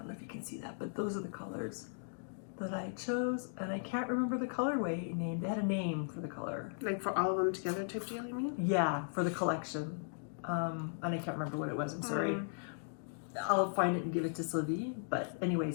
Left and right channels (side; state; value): right; silent; digital silence